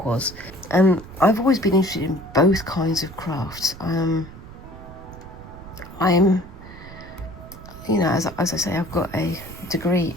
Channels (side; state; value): right; noise; rumble, 16 dB below the sound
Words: was. And I've always been interested in both kinds of crafts. I'm, you know, as I say, I've got a degree